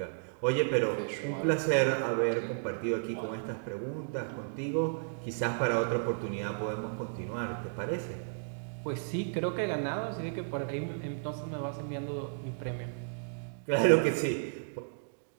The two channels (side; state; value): left; silent; digital silence